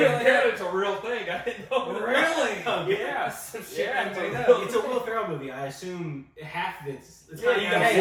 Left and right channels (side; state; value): both; identical; correlation 1.00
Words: it's a real thing. I didn't know. Really? Yeah. Some shit Yeah, I it's made a up. real- It's a Will Ferrell movie. I assume half of it's Yeah, you got